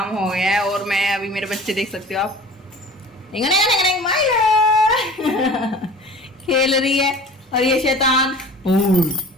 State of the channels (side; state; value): both; normal; correlation 0.42